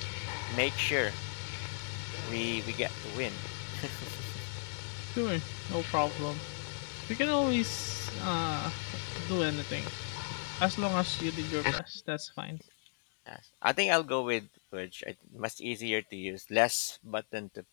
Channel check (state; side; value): silent; right; digital silence